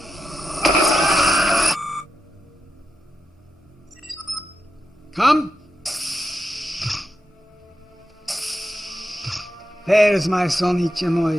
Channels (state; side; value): normal; both; correlation 0.87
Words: Come. There's my son